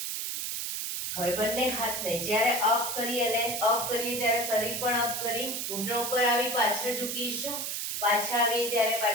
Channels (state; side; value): noise; right; hiss, 3 dB below the sound